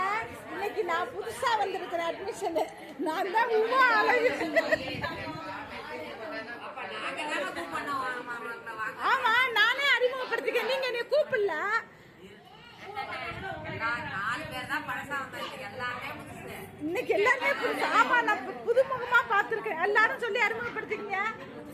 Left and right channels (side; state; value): both; identical; correlation 1.00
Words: இன்னைக்கு நான் புதுசா வந்திருக்கிற அட்மிஷன். நான் தான் ஆமா, நானே அறிமுகப்படுத்திக்க. நீங்க என்னை கூப்பிடல. இன்னைக்கு எல்லாருமே புதுசு. ஆமா, நான் புதுமுகமா பாத்துருக்கேன். எல்லாரும் சொல்லி அறிமுகப்படுத்திக்கங்க.